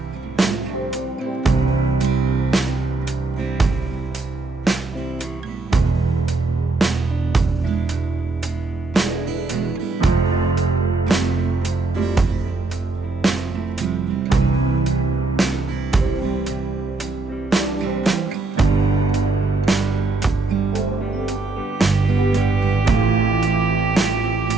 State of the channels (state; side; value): quieter; left; 3.3 dB